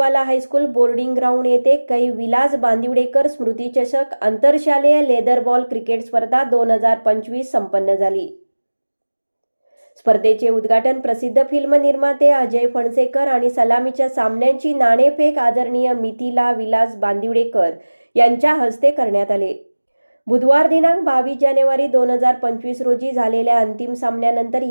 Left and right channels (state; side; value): inverted; both; correlation -1.00